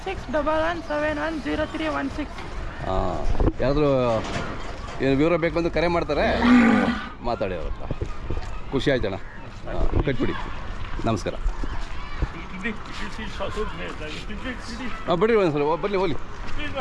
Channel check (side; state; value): both; identical; correlation 1.00